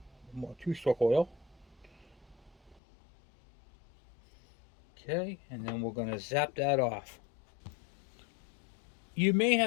more 2-stroke oil. Okay, and then we're going to zap that off. You may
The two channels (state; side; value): drops out; right; at 2.8 s